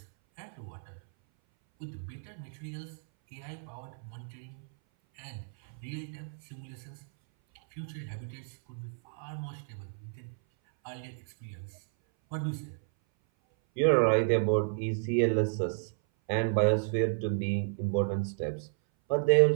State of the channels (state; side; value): silent; left; 56 dB below the other